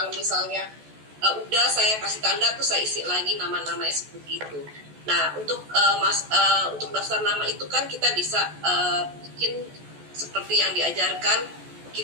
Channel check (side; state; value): left; late; 14 ms